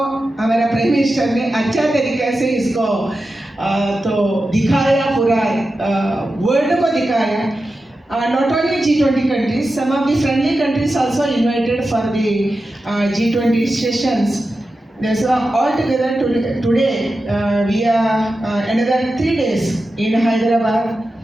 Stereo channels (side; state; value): both; normal; correlation 0.91